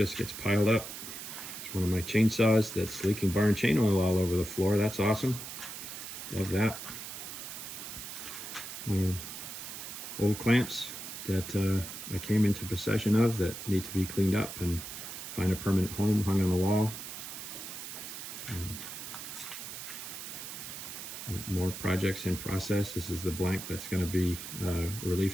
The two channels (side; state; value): right; noise; hiss, 9 dB below the sound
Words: gets piled up. It's one of my chainsaws that's leaking barn chain oil all over the floor. That's awesome. Love that. Old clamps that I came into possession of that need to be cleaned up and find a permanent home, hung on the wall. More projects in process. This is the blank that's going to be